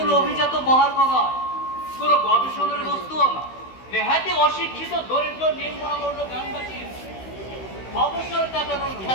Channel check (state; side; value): late; right; 16 ms